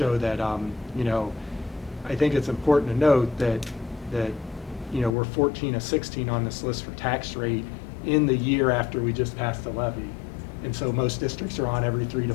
that, you know, I think it's important to note that you know, we're 14 of 16 on this list for tax rate in the year after we just passed the levy. And so most districts are on every 3 to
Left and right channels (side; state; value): right; drops out; at 5.2 s